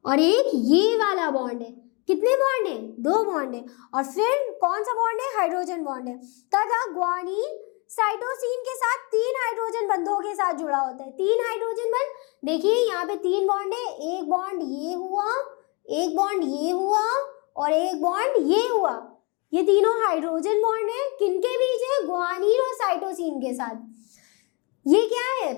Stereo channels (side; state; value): right; quieter; 30.8 dB